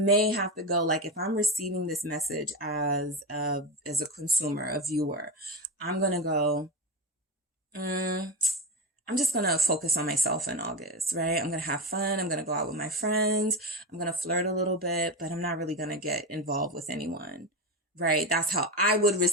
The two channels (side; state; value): both; normal; correlation 0.18